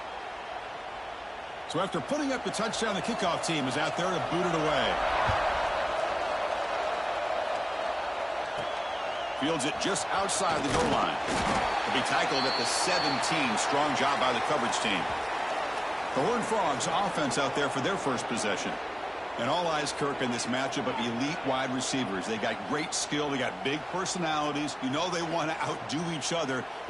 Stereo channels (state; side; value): identical; both; correlation 1.00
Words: So after putting up the touchdown, the kickoff team is out there to boot it away. Fields it just outside the goal line. He'll be tackled at the 17. Strong job by the coverage team. The Horned Frogs offense out there for their first possession. And all eyes, Kirk, in this matchup of elite wide receivers. They got great skill. They got big personalities. You know they want to outdo each other